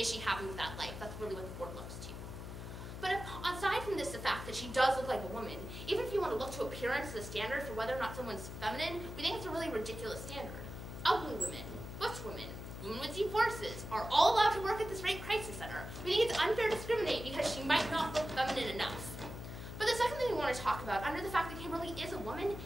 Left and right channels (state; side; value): noise; left; hum, 9 dB below the sound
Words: she happy with that life? That's really what the board looks to. But aside from this, the fact that she does look like a woman, even if you want to look to appearance as a standard for whether or not someone's feminine, we think it's a really ridiculous standard. Ugly women, butch women, women with deep voices are all allowed to work at this rape crisis center. We think it's unfair to discriminate because she might not look feminine enough. But the second thing we want to talk about, under the fact that Kimberly is a woman,